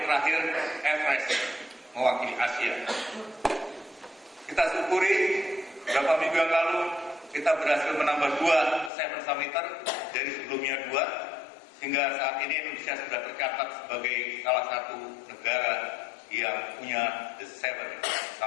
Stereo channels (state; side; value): drops out; right; at 8.9 s